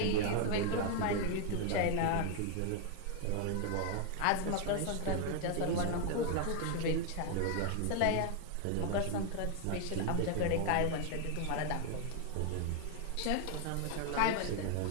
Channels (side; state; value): both; different; correlation 0.00